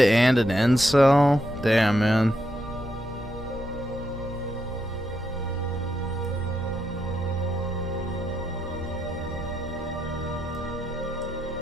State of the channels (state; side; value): normal; both; correlation 0.81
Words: an incel? Damn, man.